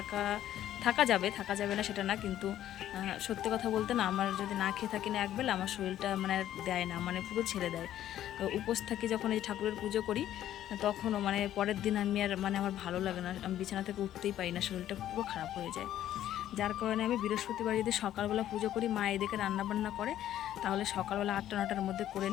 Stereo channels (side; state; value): right; quieter; 12.0 dB